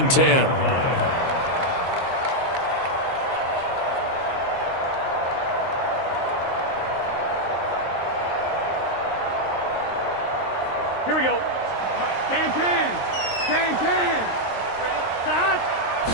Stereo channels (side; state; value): right; late; 23 ms